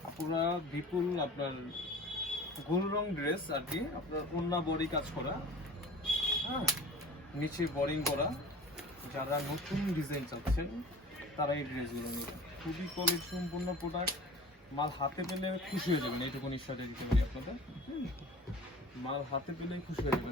আপুরা বিপুল আপনার গোল রং ড্রেস আর কি, আপনার ওন্না বডি কাজ করা, হ্যাঁ, নিচে বোরিং করা। যারা নতুন ডিজাইন চাচ্ছেন তারা এই ড্রেসগুলো নেবেন। খুবই কোয়ালিটি সম্পূর্ণ প্রোডাক্ট। মাল হাতে পেলে খুশি হয়ে যাবেন, এইটুকু নিশ্চয়তা দিতে পারি আপনাদের। মাল হাতে পেলেই খুশি হয়ে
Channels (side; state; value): both; normal; correlation 0.41